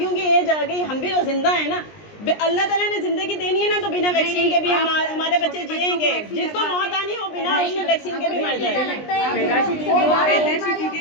की एज आ गई, हम भी तो जिंदा है ना। अल्लाह ताला ने जिंदगी देनी है ना, तो बिना वैक्सीन के भी हमारे बच्चे जिएंगे। जिसको मौत आनी हो बिना उसके वैक्सीन के भी मर जाएंगे।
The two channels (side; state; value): right; late; 20 ms